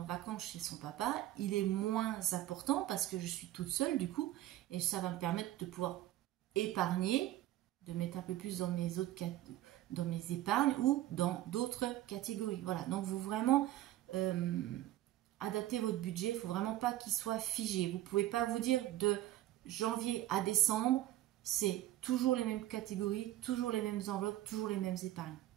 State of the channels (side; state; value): left; quieter; 14.4 dB